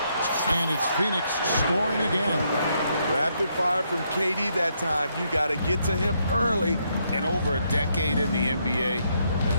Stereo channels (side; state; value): both; inverted; correlation -0.76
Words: And it's Phoenix scoring again. Rapid fire from KD that time. You got to get to him early. And over a decade in the NBA,